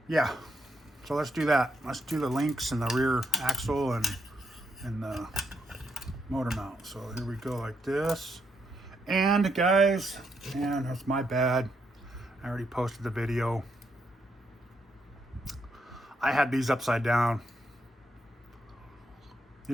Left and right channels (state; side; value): normal; both; correlation 0.78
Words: Yeah, so let's do that. Let's do the links and the rear axle and the motor mount. So here we go, like this. And guys, man, that's my bad. I already posted the video. I had these upside down.